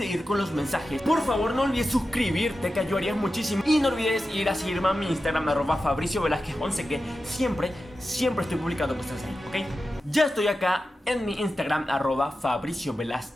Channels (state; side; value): normal; both; correlation 0.92